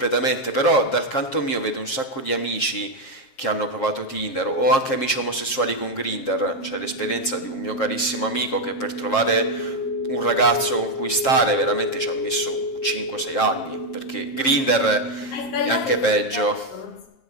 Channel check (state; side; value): late; right; 7.5 ms